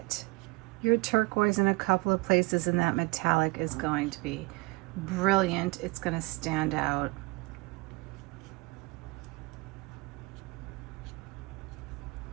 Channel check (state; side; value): quieter; left; 26.2 dB